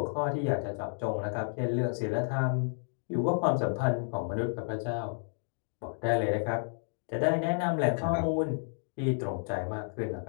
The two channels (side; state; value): right; silent; digital silence